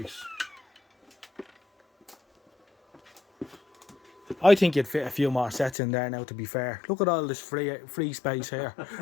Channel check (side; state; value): right; drops out; at 5.8 s